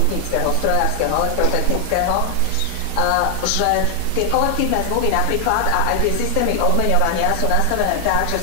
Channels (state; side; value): different; both; correlation 0.00